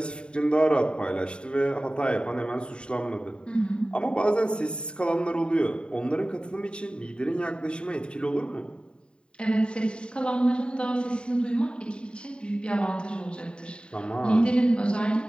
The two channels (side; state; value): right; late; 0.052 ms